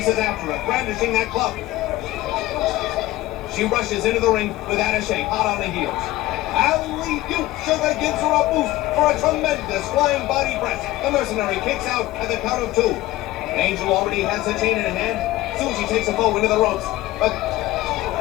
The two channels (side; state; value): right; quieter; 16.8 dB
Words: after her, brandishing that club. She rushes into the ring with Attaché hot on the heels. Alley-oop! Sugar gives her a boost for a tremendous flying body press. The mercenary kicks out at the count of 2. Angel already has the chain in her hand. Susie takes a foe into the ropes. But